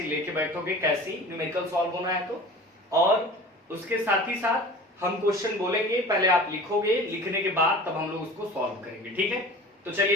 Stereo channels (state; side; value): normal; both; correlation 0.39